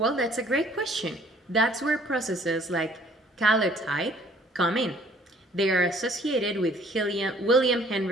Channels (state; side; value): normal; both; correlation 0.58